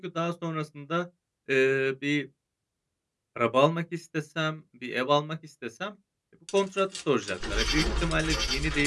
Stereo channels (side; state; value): both; identical; correlation 1.00